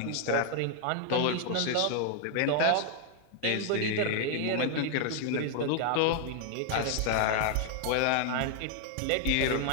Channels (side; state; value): both; different; correlation 0.00